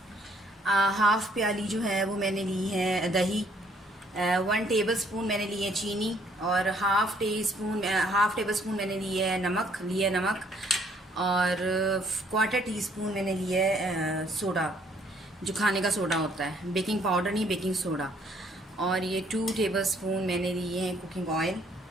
हाफ़ प्याली जो है वो मैंने ली है दही, 1 टेबल स्पून मैंने ली है चीनी, और हाफ़ टेबल स्पून मैंने लिया है नमक, और क्वार्टर टी स्पून मैंने लिया है सोडा, जो खाने का सोडा होता है, बेकिंग पाउडर नहीं, बेकिंग सोडा। और ये 2 टेबल स्पून मैंने लिए हैं कुकिंग ऑयल,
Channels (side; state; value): both; normal; correlation 0.64